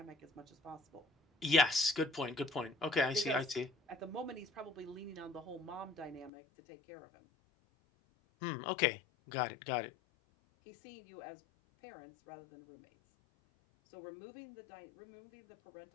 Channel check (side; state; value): right; drops out; at 6.3 s